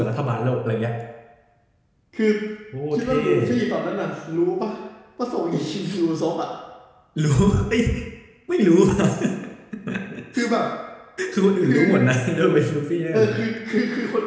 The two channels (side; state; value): both; identical; correlation 1.00